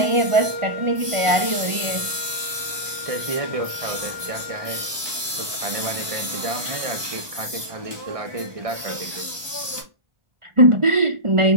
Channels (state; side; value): late; left; 1.2 ms